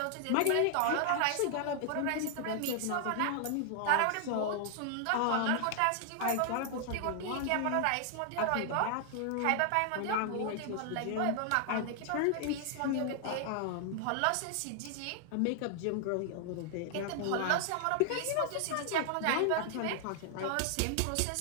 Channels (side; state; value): both; different; correlation 0.00